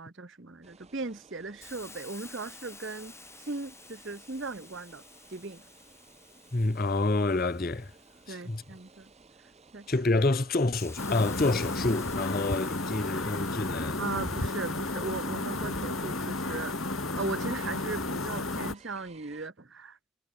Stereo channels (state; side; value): normal; both; correlation 0.50